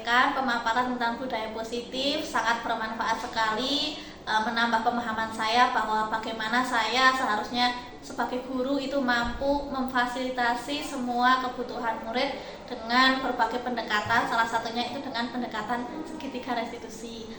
pemaparan tentang budaya positif, sangat bermanfaat sekali, menambah pemahaman saya bahwa bagaimana saya seharusnya sebagai guru itu mampu memfasilitasi semua kebutuhan murid dengan berbagai pendekatan, salah satunya itu dengan pendekatan segitiga restitusi.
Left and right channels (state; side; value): identical; both; correlation 1.00